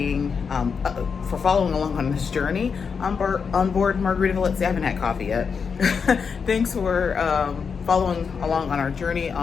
for following along on this journey on board Margaritaville at Sea. I haven't had coffee yet. Thanks for following along on our journey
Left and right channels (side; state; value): right; quieter; 5.9 dB